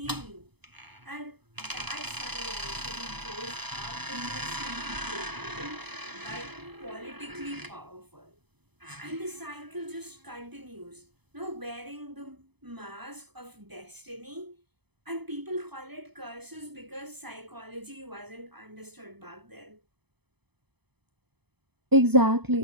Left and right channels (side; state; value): left; late; 0.98 ms